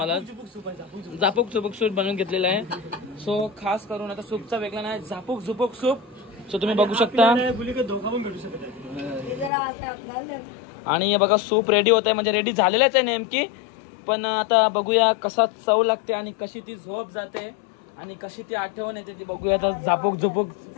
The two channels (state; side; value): drops out; right; at 9.5 s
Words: झापूक झुपूक सूप बनवून घेतलेलं आहे. सो खास करून आता सूपचा वेगळा नाही, झापूक झुपूक सूप. सो तुम्ही बघू शकता आणि बघा सूप रेडी होत आहे, म्हणजे रेडी झालेलंच आहे नेमकी. पण आता बघूया कसा चव लागते आणि कशी ती झोप जाते आणि कशी ती आठवण येते ती बघूया आता झापूक झुपूक